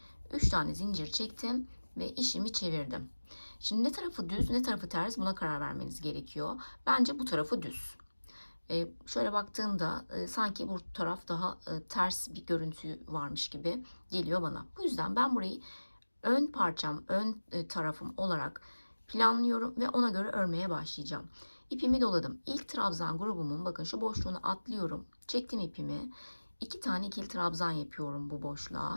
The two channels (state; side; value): inverted; both; correlation -1.00